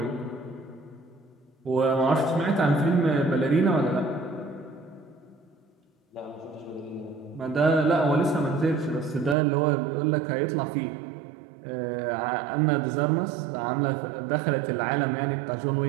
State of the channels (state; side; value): drops out; left; at 9.3 s